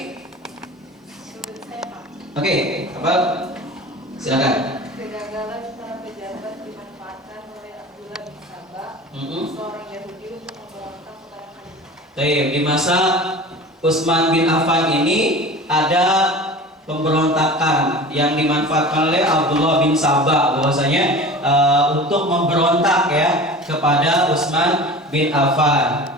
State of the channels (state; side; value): normal; both; correlation 0.37